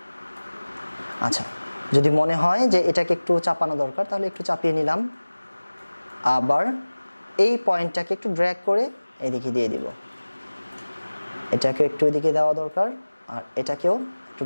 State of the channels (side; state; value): both; inverted; correlation -1.00